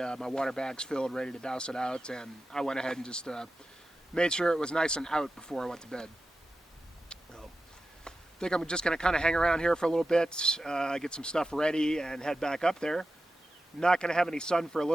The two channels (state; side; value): normal; both; correlation 0.92